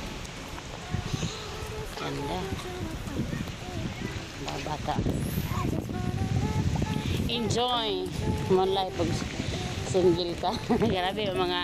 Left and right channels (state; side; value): identical; both; correlation 1.00